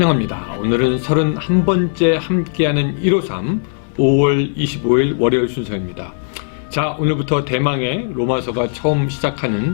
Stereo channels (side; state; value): right; silent; 68 dB below the other